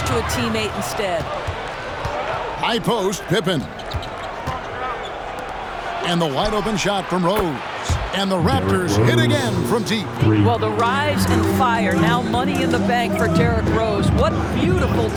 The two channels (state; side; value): identical; both; correlation 1.00